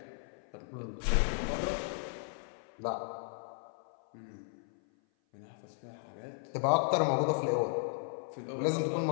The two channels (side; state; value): right; silent; 54 dB below the other